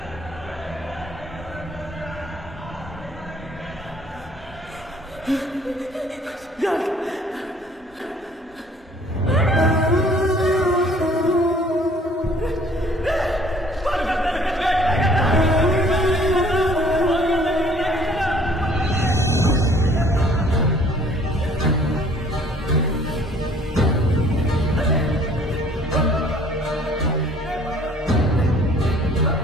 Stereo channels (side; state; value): both; normal; correlation 0.56